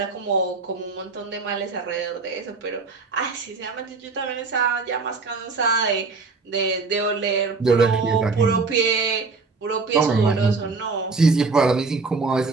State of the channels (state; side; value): quieter; left; 4.2 dB